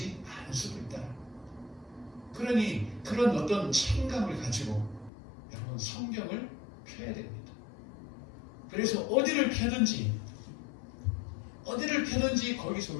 않을 수도 있다. 그러니 그런 어떤 책임감을 가지고 여러분 성경을 펴야 됩니다. 그래서 어디를 펴든지 거기서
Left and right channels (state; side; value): drops out; right; at 5.1 s